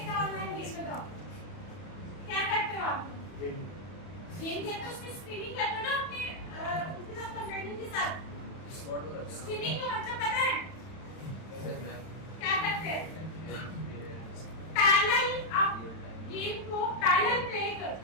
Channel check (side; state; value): right; late; 31 ms